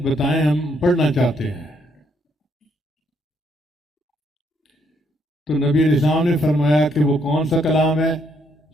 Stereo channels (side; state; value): both; normal; correlation 0.72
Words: بتائیں ہم پڑھنا چاہتے ہیں۔ تو نبی علیہ السلام نے فرمایا کہ وہ کون سا کلام ہے؟